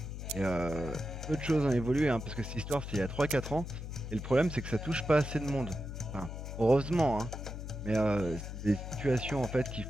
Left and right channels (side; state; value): left; noise; hum, 7 dB below the sound